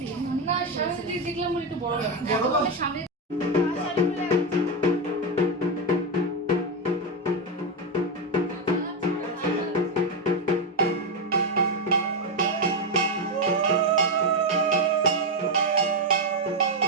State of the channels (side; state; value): both; normal; correlation 0.07